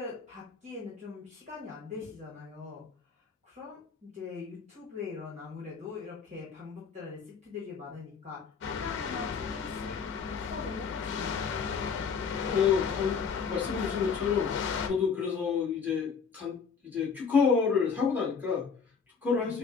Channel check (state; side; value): quieter; right; 5.9 dB